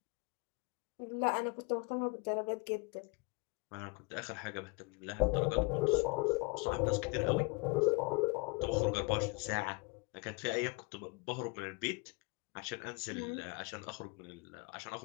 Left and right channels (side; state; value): right; quieter; 27.5 dB